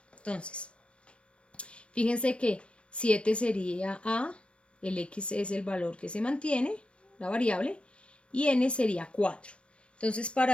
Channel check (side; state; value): right; late; 0.059 ms